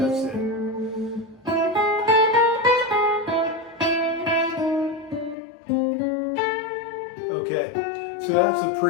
it. Okay, so that's the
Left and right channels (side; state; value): right; drops out; at 5.4 s